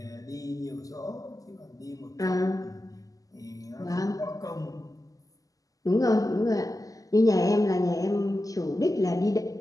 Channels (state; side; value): late; right; 0.17 ms